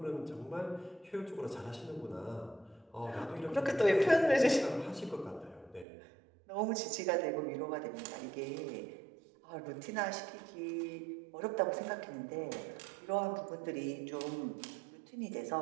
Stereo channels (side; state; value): left; drops out; at 5.9 s